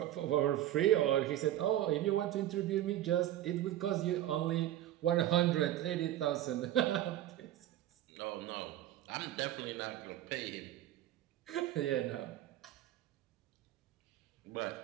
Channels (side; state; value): left; quieter; 13.2 dB